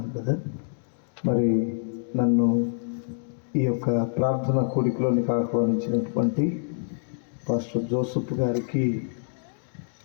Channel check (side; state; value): right; silent; digital silence